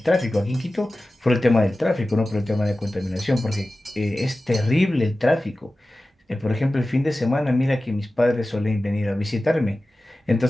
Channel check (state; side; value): normal; both; correlation 0.95